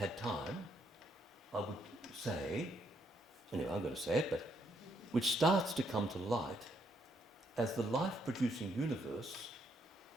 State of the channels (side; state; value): both; normal; correlation 0.74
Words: time, I would say, anyway, I'm going to say it, but which starts to come to light as the life-producing universe